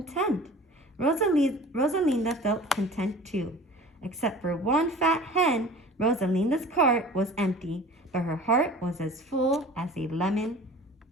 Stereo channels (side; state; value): both; normal; correlation 0.42